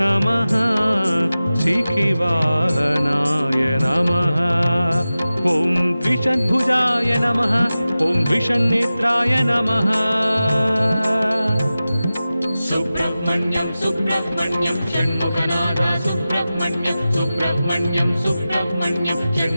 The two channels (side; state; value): both; inverted; correlation -0.95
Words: नमः शिखिवाहनाय नमः ॐ द्विषद्भुजाय नमः ॐ द्विषन्नेत्राय नमः सुब्रह्मण्यं सुब्रह्मण्यं षण्मुखनादा सुब्रह्मण्यं सुब्रह्मण्यं सुब्रह्मण्यं